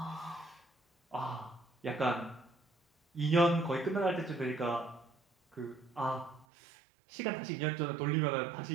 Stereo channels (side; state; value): left; drops out; at 6.5 s